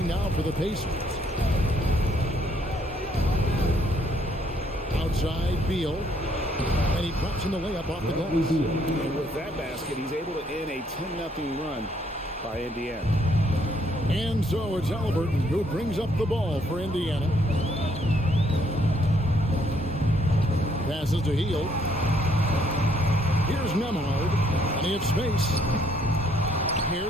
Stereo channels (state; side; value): normal; both; correlation 0.68